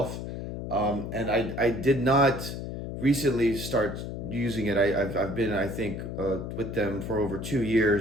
And I did not recently start using it. I've been, I think, with them for over 2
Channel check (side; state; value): left; noise; hum, 6 dB below the sound